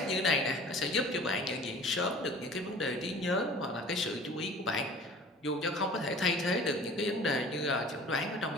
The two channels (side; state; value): both; normal; correlation 0.44